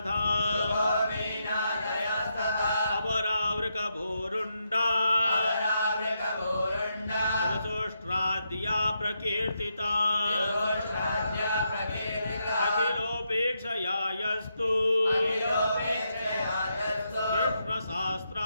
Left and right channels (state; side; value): inverted; both; correlation -0.81